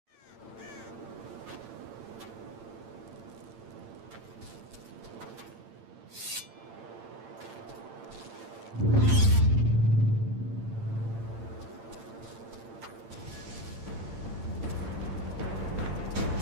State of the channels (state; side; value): late; left; 8.8 ms